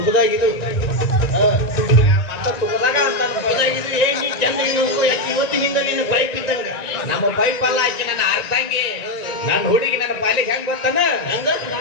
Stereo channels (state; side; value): late; right; 1.9 ms